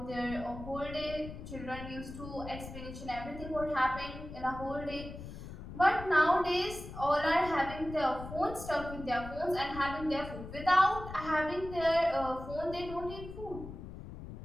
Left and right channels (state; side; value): noise; left; rumble, 11 dB below the sound